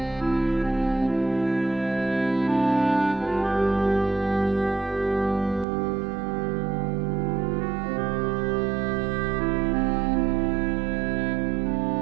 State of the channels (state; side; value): drops out; left; at 5.7 s